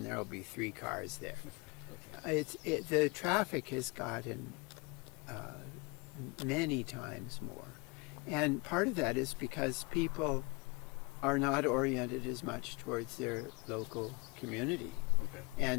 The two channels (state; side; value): quieter; right; 28.6 dB